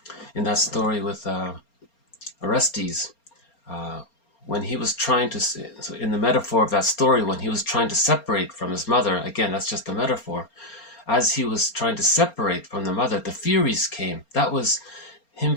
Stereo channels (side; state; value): right; late; 4.3 ms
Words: In that story with Orestes, when he was trying to, so in the metaphor of that story, when he was trying to separate from his mother, again, that's just a metaphor, as he was trying to separate from the mother, the Furies came. That was him